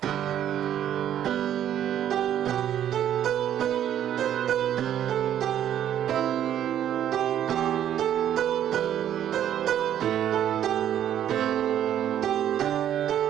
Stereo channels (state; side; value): quieter; left; 10.6 dB